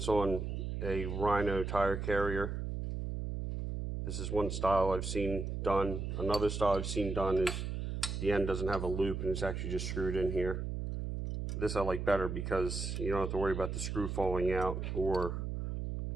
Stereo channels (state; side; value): noise; right; hum, 3 dB below the sound